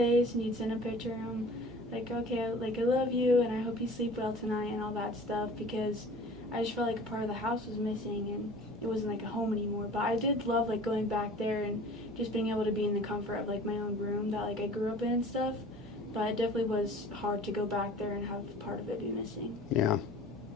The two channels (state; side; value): normal; both; correlation 0.45